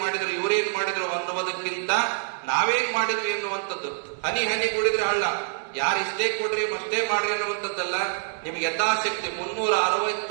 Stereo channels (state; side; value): silent; left; 58 dB below the other